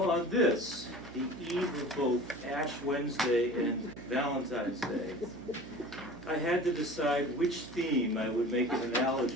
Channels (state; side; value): noise; right; hum, 18 dB below the sound